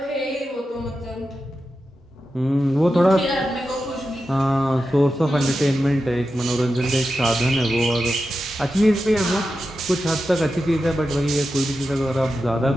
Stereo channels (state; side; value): normal; both; correlation 0.90